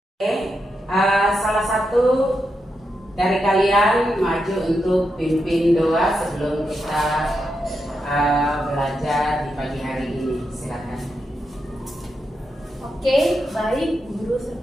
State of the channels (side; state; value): both; normal; correlation 0.85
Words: Oke, salah satu dari kalian maju untuk pimpin doa sebelum kita belajar di pagi hari ini. Silakan. Oke, baik guru